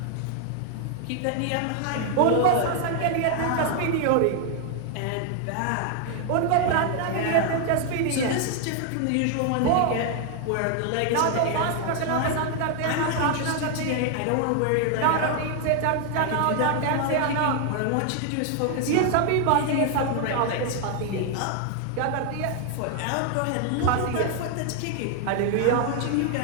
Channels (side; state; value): both; different; correlation 0.00